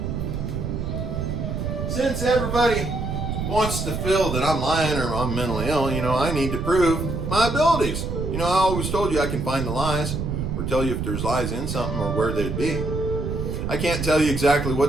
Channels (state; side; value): noise; right; rumble, 3 dB below the sound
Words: since everybody wants to feel that I'm lying or I'm mentally ill, I need to prove my abilities. I always told you I can find the lies or tell you if there's lies in something or where they'd be. I can't tell you exactly